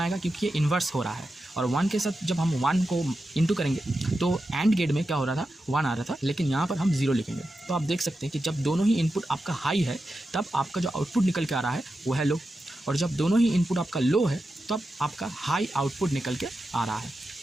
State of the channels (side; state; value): both; normal; correlation 0.90